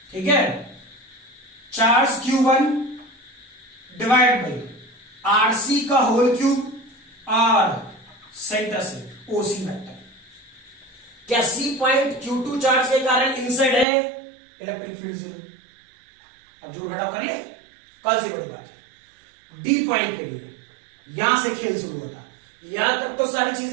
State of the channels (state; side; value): drops out; left; at 13.9 s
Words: ठीक है, charge Q1 divide by RC का होल क्यूब और सेंटर से ओसी वेक्टर। क्या सी पॉइंट Q2 चार्ज के कारण इनसाइड है? Electric field 0। अब जोड़ घटाव कर लिए, कल से बड़ी बात है। डी पॉइंट के लिए यहां से खेल शुरू होता है। यहां तक तो सारी